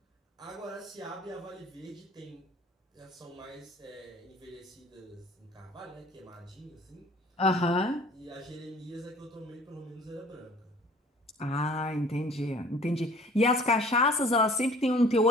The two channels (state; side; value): normal; both; correlation 0.51